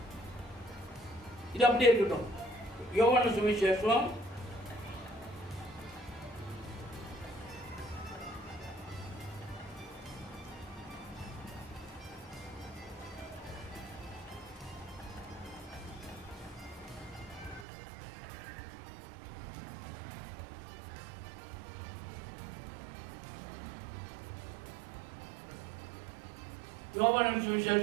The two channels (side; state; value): left; drops out; at 17.7 s